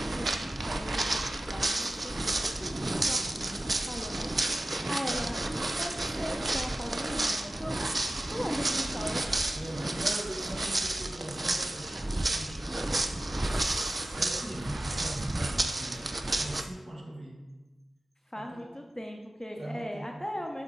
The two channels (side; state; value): both; normal; correlation 0.94